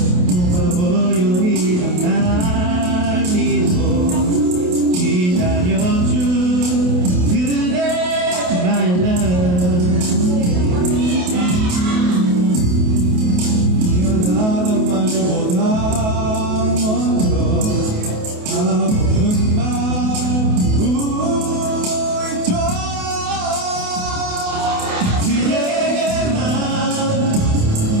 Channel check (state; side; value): late; left; 28 ms